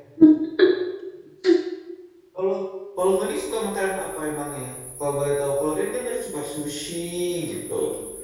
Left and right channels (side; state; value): both; identical; correlation 1.00